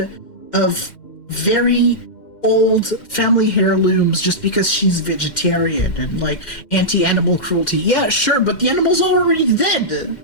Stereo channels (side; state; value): right; late; 2.1 ms